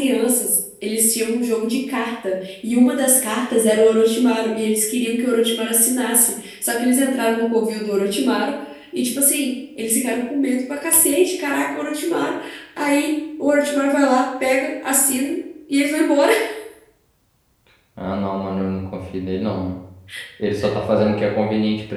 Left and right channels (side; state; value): both; identical; correlation 1.00